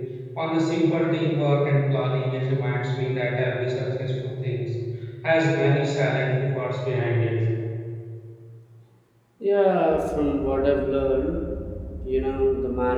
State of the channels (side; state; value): both; identical; correlation 1.00